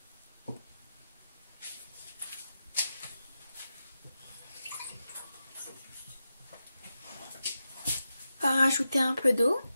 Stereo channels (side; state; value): both; inverted; correlation -0.89